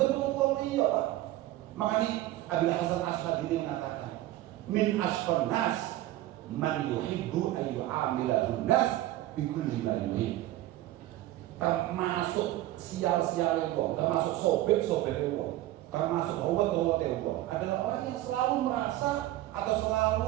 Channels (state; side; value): quieter; left; 15.4 dB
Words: iya Pak. Makanya Abil Hasan Asy'adili mengatakan, min asqan nas man yuhibbu an yu'amilahun nas bikulli ma yuhib. Termasuk sial-sial wong, termasuk sobek-sobek wong, termasuk howat-howat wong adalah orang yang selalu merasa atau